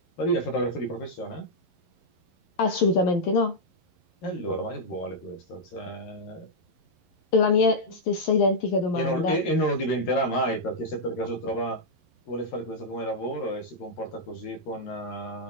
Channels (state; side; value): late; right; 11 ms